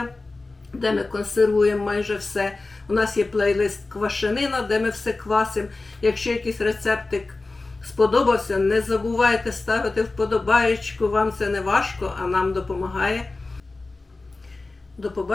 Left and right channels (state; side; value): quieter; right; 3.4 dB